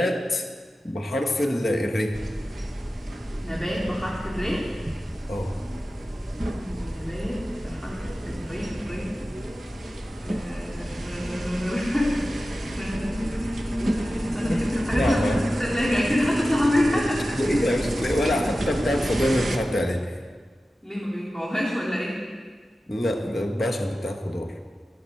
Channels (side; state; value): both; normal; correlation 0.94